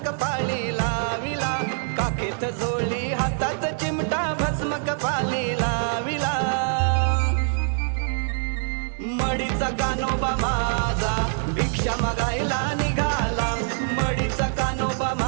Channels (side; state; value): left; silent; digital silence